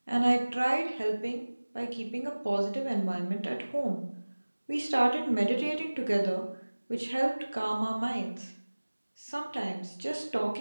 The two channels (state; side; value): inverted; both; correlation -1.00